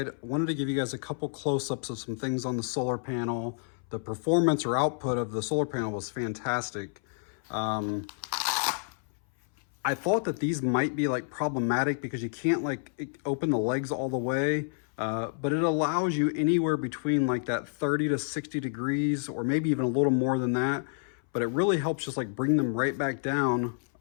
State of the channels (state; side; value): silent; right; 58 dB below the other